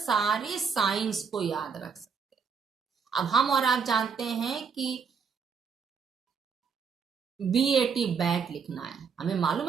साइंस को याद रख सकते। अब हम और आप जानते हैं कि BAT बैट लिखना है, हमें मालूम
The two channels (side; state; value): left; quieter; 6.0 dB